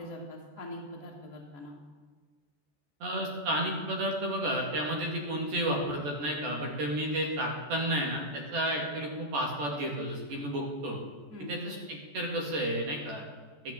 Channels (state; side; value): late; left; 14 ms